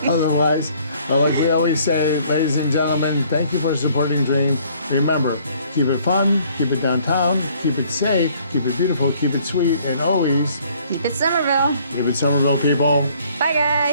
otherwise. But like we always say, ladies and gentlemen, thank you for supporting Dream. Remember, keep it fun, keep it downtown, keep it safe, keep it beautiful, keep it sweet, and always Keep it Summerville. keep it Summerville, people. Bye,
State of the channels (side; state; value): both; inverted; correlation -0.60